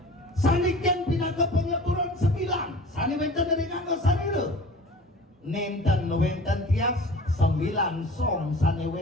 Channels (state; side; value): normal; both; correlation 0.42